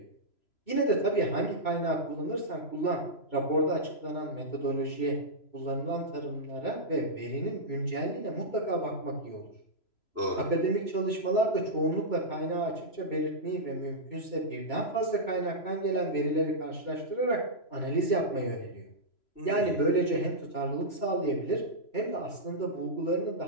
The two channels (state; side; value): late; right; 3.0 ms